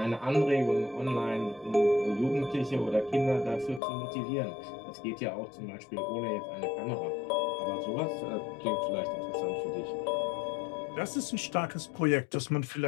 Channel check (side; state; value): right; drops out; at 3.8 s